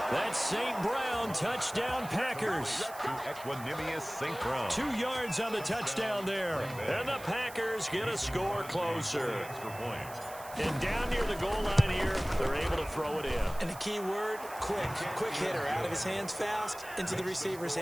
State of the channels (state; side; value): noise; right; hiss, 16 dB below the sound